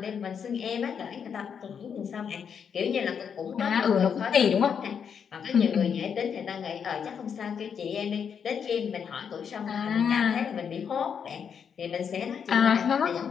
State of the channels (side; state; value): right; quieter; 7.2 dB